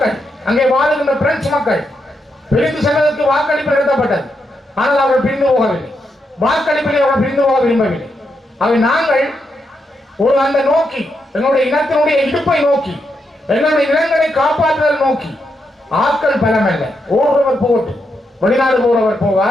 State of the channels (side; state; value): both; normal; correlation 0.82